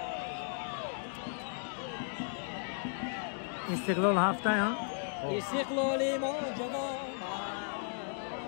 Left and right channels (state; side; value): silent; right; digital silence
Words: İstiklal hafta ya. İstiklali macaba.